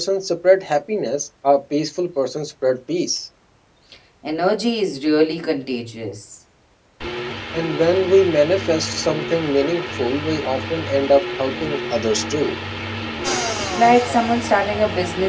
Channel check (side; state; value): both; identical; correlation 1.00